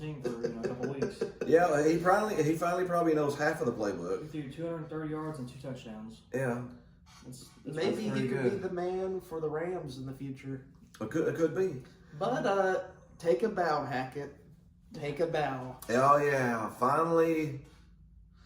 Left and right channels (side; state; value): both; identical; correlation 1.00